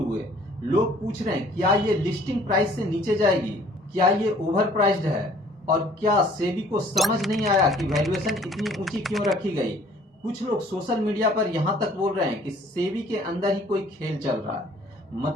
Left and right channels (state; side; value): normal; both; correlation 0.56